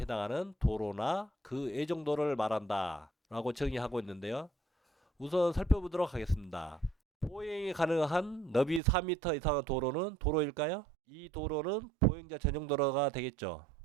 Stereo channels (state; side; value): drops out; left; at 8.8 s